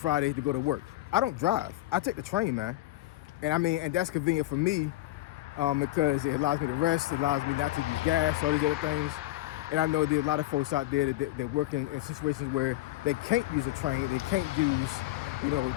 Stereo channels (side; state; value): right; quieter; 16.6 dB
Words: to go to work. I don't drive. I take the train, man. And that's convenient for me because it allows me to rest. It allows me not to use gas, all these other things. And I know there's a lot of folks out there that work in situations where they can't use a train. They can't use,